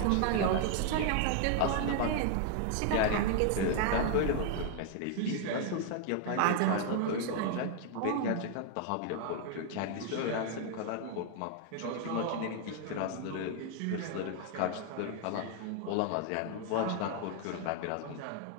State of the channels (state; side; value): different; both; correlation 0.00